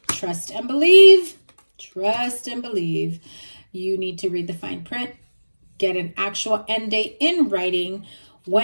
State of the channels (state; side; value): inverted; both; correlation -1.00